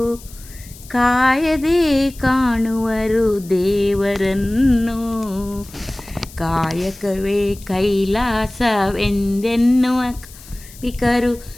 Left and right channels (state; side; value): noise; left; hiss, 20 dB below the sound